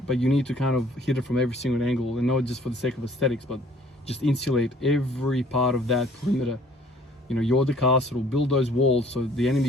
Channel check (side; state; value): both; normal; correlation 0.56